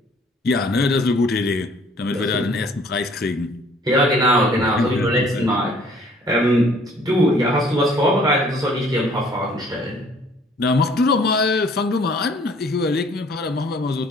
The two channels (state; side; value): normal; both; correlation 0.57